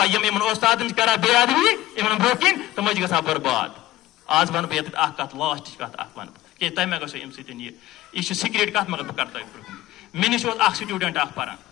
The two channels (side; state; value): right; quieter; 15.9 dB